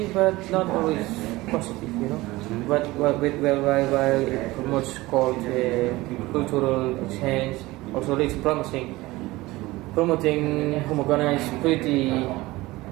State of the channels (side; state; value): left; quieter; 19.7 dB